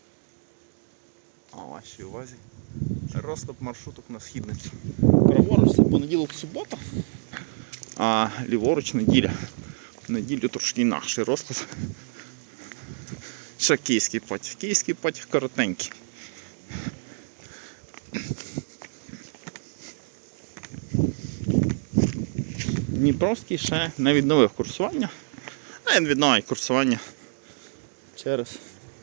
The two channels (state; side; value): silent; left; digital silence